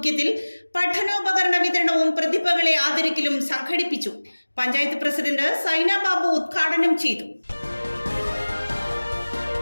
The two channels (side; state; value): both; inverted; correlation -1.00